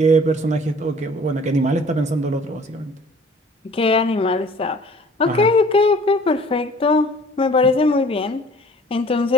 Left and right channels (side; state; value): both; normal; correlation 0.51